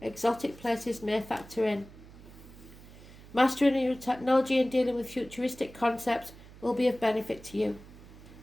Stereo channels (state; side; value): noise; right; hum, 19 dB below the sound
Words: exotic places may factor in. Mastering your technology and dealing with futuristic concepts will be of benefit to you.